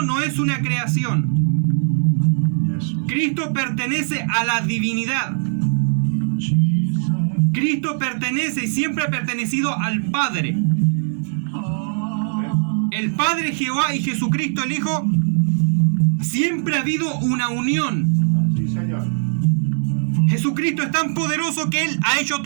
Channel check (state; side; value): silent; left; digital silence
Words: no es una creación. Cristo pertenece a la divinidad. Cristo pertenece y siempre ha pertenecido al Padre. El Padre Jehová y Jesucristo el Hijo, siempre ha habido una unión. Sí, Señor. Jesucristo es tan poderoso que Él ha hecho